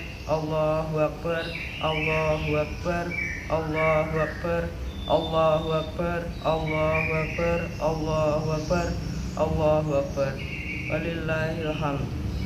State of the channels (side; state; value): both; identical; correlation 1.00